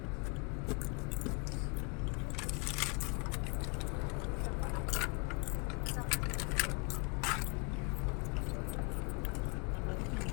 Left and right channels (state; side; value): quieter; right; 33.6 dB